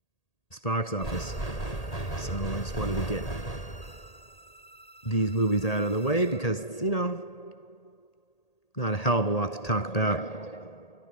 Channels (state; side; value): late; right; 1.8 ms